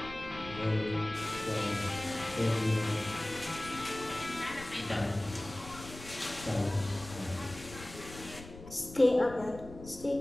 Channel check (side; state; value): left; noise; rumble, 15 dB below the sound